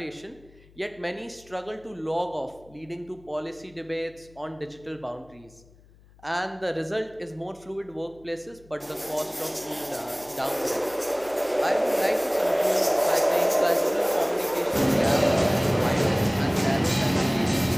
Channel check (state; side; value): noise; left; hum, 26 dB below the sound